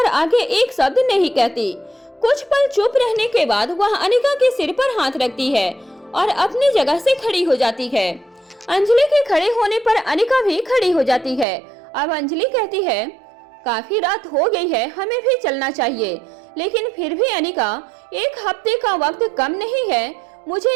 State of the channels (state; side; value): drops out; left; at 11.5 s